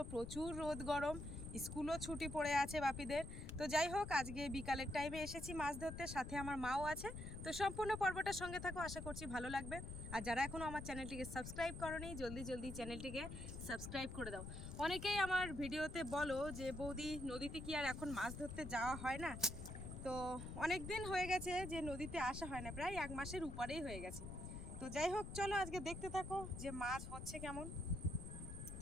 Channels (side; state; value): left; noise; rumble, 8 dB below the sound